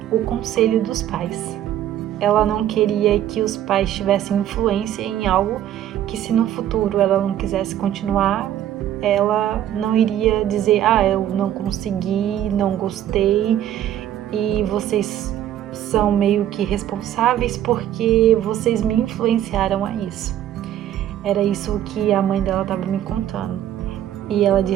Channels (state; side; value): quieter; left; 11.5 dB